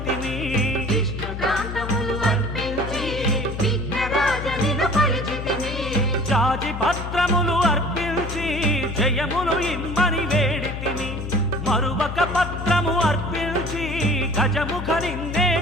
విష్ణుకాంతములు అర్పించి విఘ్నరాజనిను కొలిచితిని జాజి పత్రములు అర్పించి జయములు ఇమ్మని వేడితిని మరువక పత్రము అర్పించి గజముఖ నిన్నే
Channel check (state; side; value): noise; left; hum, 6 dB below the sound